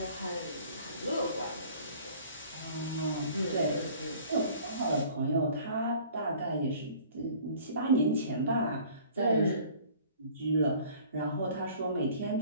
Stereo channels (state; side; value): inverted; both; correlation -0.50